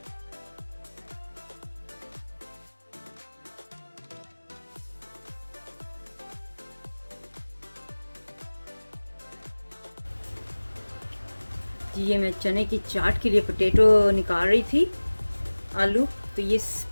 ये मैं चने की चाट के लिए पोटैटो निकाल रही थी, आलू, तो ये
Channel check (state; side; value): inverted; both; correlation -1.00